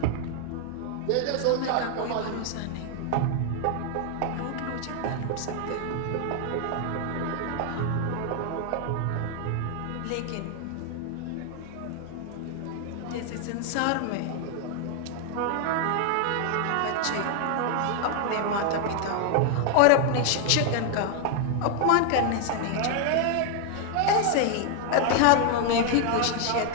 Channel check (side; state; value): both; different; correlation 0.00